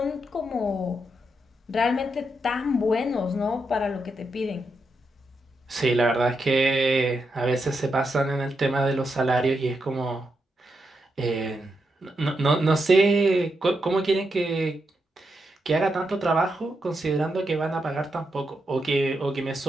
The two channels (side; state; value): both; normal; correlation 0.84